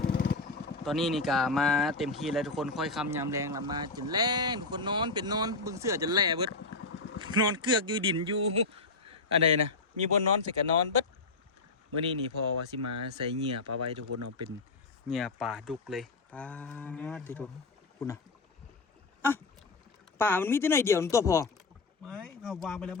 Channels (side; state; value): right; quieter; 3.6 dB